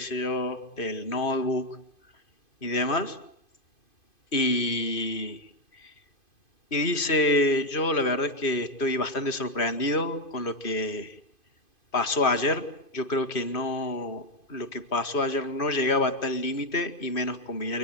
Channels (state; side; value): late; right; 2.5 ms